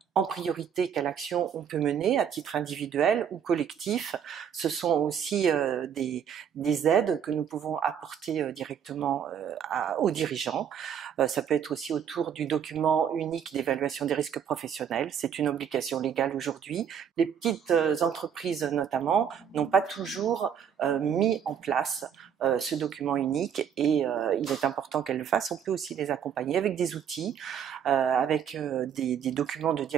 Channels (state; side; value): quieter; left; 8.2 dB